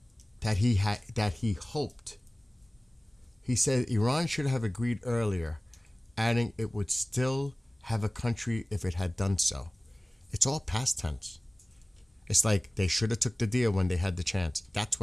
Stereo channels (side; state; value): both; normal; correlation 0.98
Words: That he hoped. He said Iran should have agreed earlier, adding it would still have a country if it had done so. It's all past tense. It's like they should have took the deal when they had the chance. That's